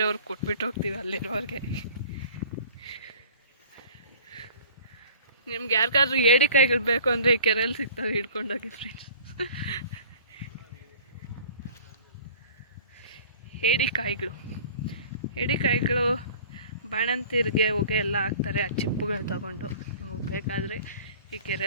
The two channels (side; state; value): both; inverted; correlation -0.46